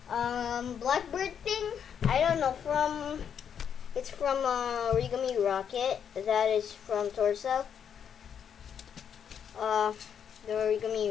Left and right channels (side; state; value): right; quieter; 8.0 dB